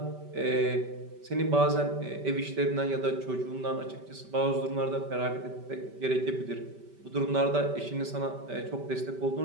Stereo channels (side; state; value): left; late; 5.1 ms